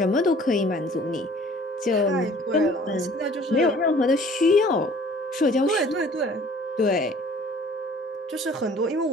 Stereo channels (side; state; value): both; normal; correlation 0.52